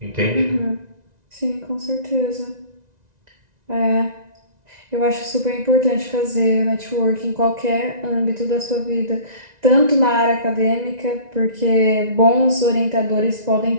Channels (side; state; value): left; late; 1.9 ms